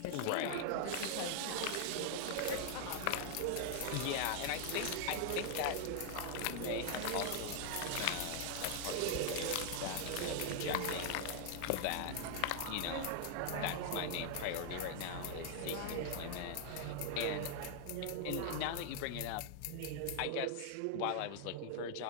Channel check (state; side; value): different; both; correlation 0.00